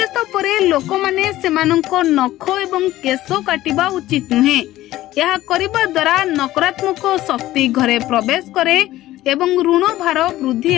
परे लोक माने सेमानंक नख एवं केश काटिबा उचित नुहे। यह करिबा द्वारा नकारात्मक शक्ति घरे प्रवेश करे एवं ऋण भार वृद्धि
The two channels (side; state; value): right; quieter; 15.3 dB